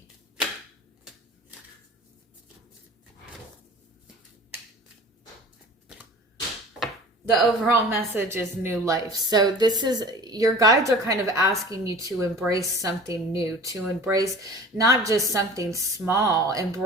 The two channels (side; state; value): both; normal; correlation 0.42